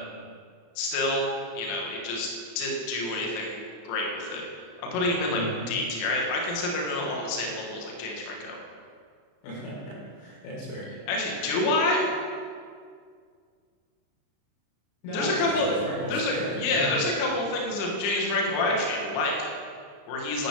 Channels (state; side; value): late; right; 34 ms